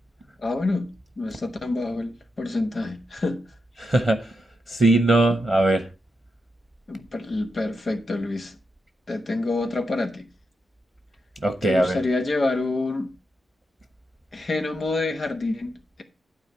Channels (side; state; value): both; normal; correlation 0.85